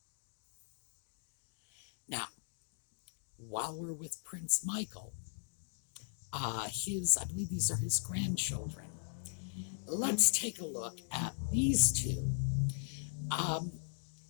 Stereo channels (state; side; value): silent; right; digital silence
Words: Now, while we're with Prince Michael, I believe these are his grandchildren. Let's take a look at these two.